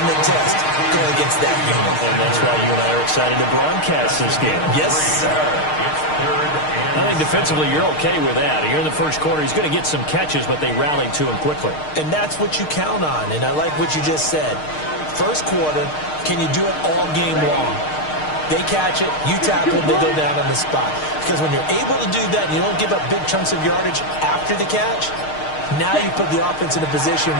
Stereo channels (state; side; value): late; right; 6.5 ms